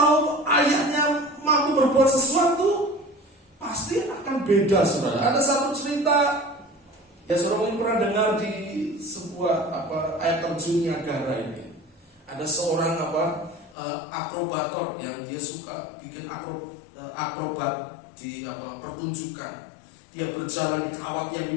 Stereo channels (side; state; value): right; drops out; at 13.8 s